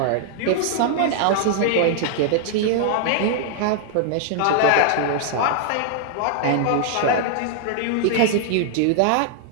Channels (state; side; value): different; both; correlation -0.01